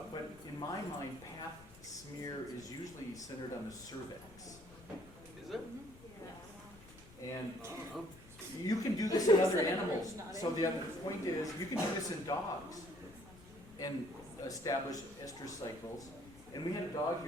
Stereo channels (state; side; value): noise; left; rumble, 20 dB below the sound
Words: but in my mind, pap smear is usually centered on the cervix. Is it? And I don't know. you can do this in other Everybody's animals. nodding. So the other point is, you can do this in dogs and establish estrous cycles. And we had a dog